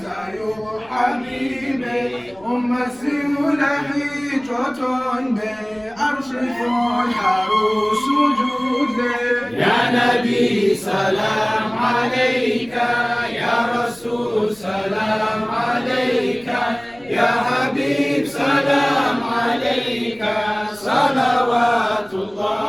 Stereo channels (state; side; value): noise; left; rumble, 27 dB below the sound